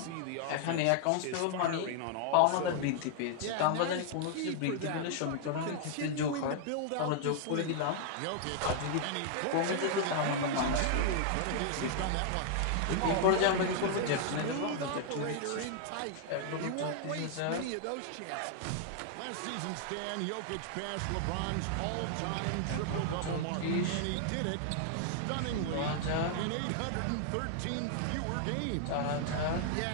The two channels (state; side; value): different; both; correlation 0.00